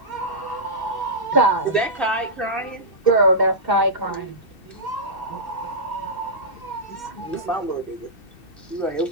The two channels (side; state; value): right; late; 2.7 ms